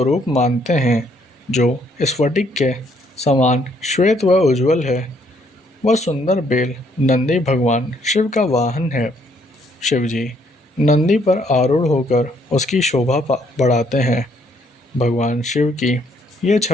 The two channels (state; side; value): normal; both; correlation 0.68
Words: मानते हैं, जो स्फटिक के समान श्वेत व उज्ज्वल है, वह सुंदर बेल नंदी भगवान शिव का वाहन है। शिवजी नंदी पर आरूढ़ होकर उसकी शोभा बढ़ाते हैं। भगवान शिव की यह